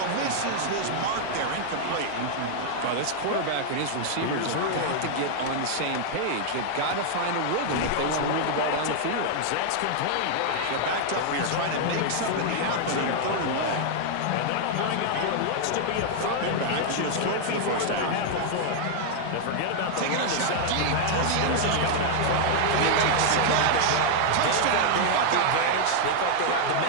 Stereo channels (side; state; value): both; different; correlation 0.00